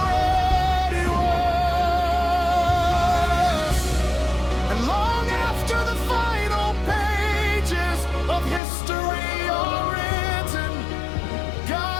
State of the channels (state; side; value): drops out; right; at 8.6 s